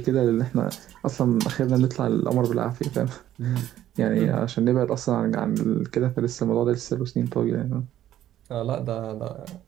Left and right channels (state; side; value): quieter; left; 12.3 dB